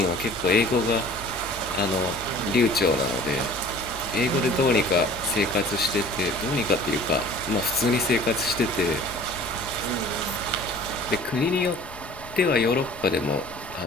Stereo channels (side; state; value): left; noise; rumble, 18 dB below the sound